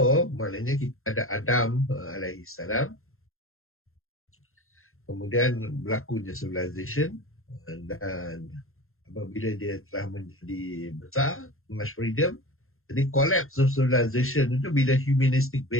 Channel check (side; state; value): right; late; 0.61 ms